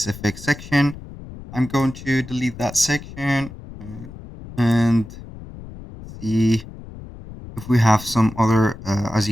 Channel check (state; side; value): noise; left; rumble, 15 dB below the sound